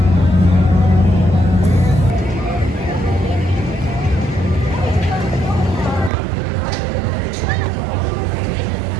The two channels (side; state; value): left; drops out; at 6.1 s